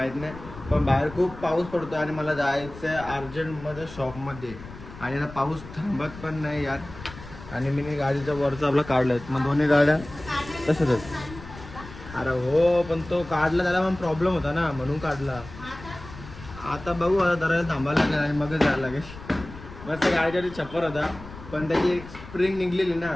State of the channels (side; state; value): left; noise; rumble, 15 dB below the sound